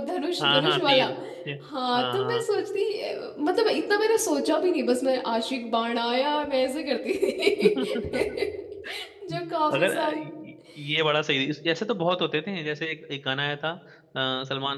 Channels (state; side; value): identical; both; correlation 1.00